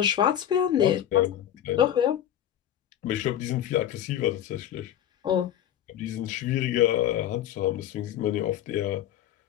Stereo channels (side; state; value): right; quieter; 10.9 dB